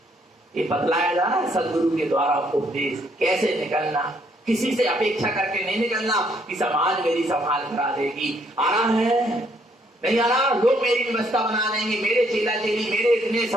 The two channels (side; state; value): both; normal; correlation 0.69